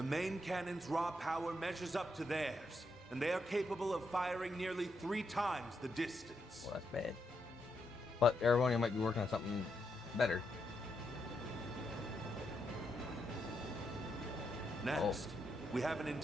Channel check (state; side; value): normal; both; correlation 0.81